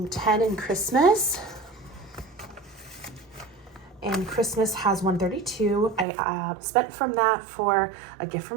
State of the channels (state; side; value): drops out; left; at 6.1 s